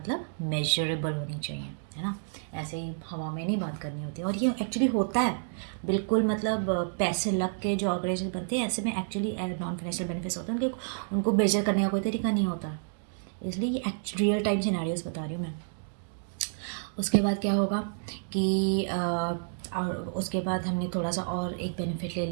मेजरेबल होनी चाहिए, है ना। ऐसे ही हवा में नहीं बात करनी होती, और ये एक्चुअली होता है बिल्कुल, मतलब पैसे लग के जो ऑर्गेनाइजेशन बनते हैं ऐसे में एक्चुअली नॉन फाइनेंशियल बेनिफिट्स होते हैं, उनको मेजर करने का कोई तरीका नहीं होता, इसलिए ये रियल टाइम सिनेरियोस बता रही हूँ मैं। उसके बाद क्या होगा कि और उसके बाद हमने थोड़ा सा और एक बेनिफिट ले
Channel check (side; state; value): left; silent; digital silence